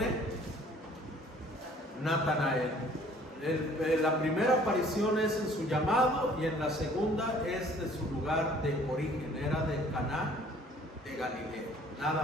Natanael. La primera aparición es en su llamado, y en la segunda es de su lugar de origen, era de Caná de Galilea,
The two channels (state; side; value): normal; both; correlation 0.55